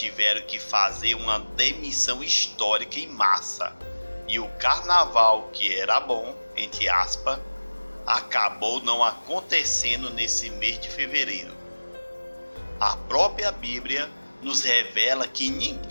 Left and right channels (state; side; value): inverted; both; correlation -1.00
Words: que fazer uma demissão histórica em massa. E o carnaval, que era bom, entre aspas, acabou não acontecendo nesse mês de fevereiro. A própria Bíblia nos revela que